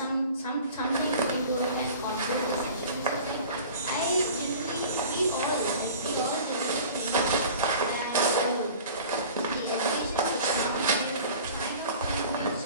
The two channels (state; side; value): inverted; both; correlation -0.42